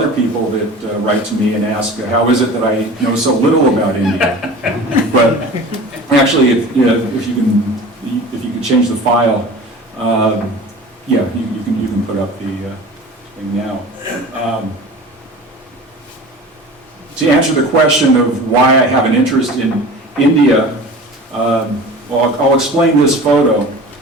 people that write to me and ask, how is it that I know so little about India? But actually, if you can change the file, you can put up the thing now. To answer the question of why I have an interest in India, I'll explain this photo.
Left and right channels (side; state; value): both; normal; correlation 0.38